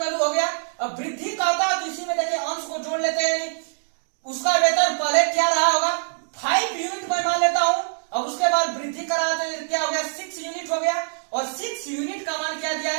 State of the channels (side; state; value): left; silent; 63 dB below the other